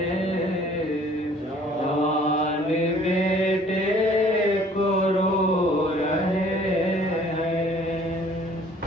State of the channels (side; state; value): both; normal; correlation 0.55